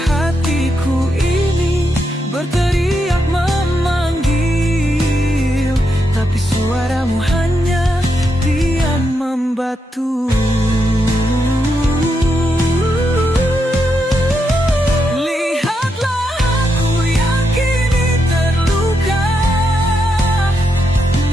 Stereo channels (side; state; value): both; normal; correlation 0.82